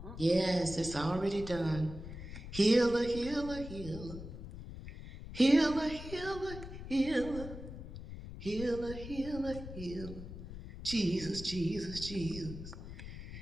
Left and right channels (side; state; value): left; noise; rumble, 11 dB below the sound